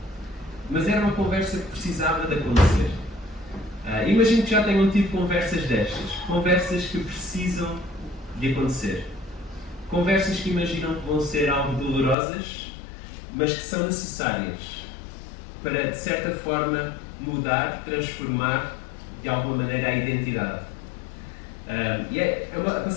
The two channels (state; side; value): drops out; right; at 12.2 s